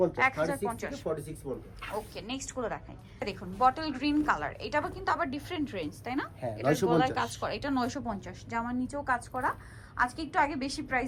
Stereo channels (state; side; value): identical; both; correlation 1.00